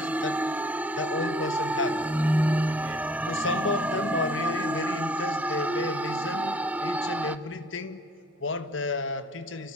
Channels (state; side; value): normal; both; correlation 0.56